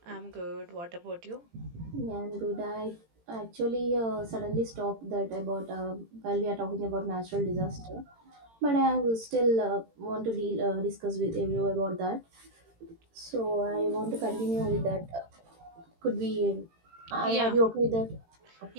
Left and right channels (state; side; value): late; left; 18 ms